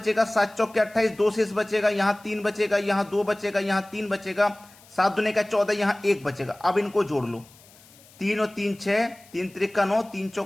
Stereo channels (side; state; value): left; noise; hiss, 25 dB below the sound